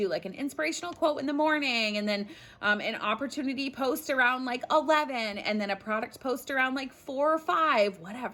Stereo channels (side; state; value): both; identical; correlation 1.00